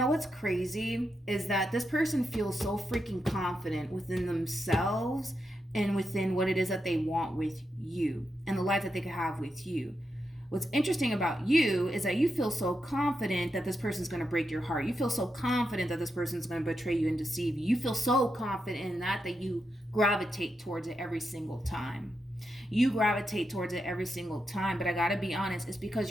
crazy is that this person feels so freaking confident within themselves and within what it is that they want with you and the life that they could have with you. What's interesting about you is that you feel so confident that this person's going to break your heart. You feel so confident that this person's going to betray you and deceive you. You feel so confident in that you gravitate towards it every single time. You gravitate towards it every single time, but I gotta be honest, it's because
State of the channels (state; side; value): normal; both; correlation 0.85